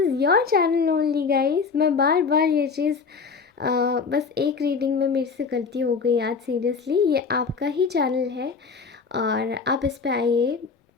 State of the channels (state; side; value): quieter; right; 5.2 dB